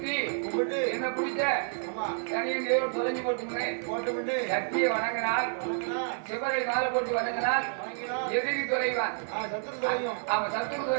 என்ன பிடிச்ச தனியன் தேவன் தொலைஞ்சு போட்டு சக்தியை வணங்கினால், சிவரை மாலை போட்டு வணங்கினால் எதிரி குறைவான். ஆமா, சத்துரு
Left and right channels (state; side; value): silent; left; digital silence